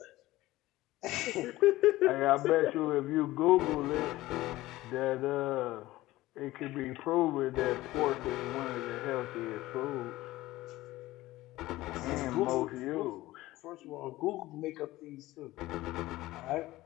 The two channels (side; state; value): right; quieter; 17.5 dB